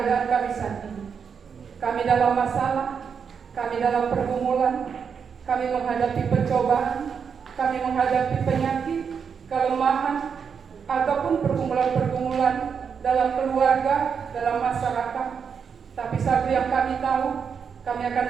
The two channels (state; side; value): quieter; left; 6.6 dB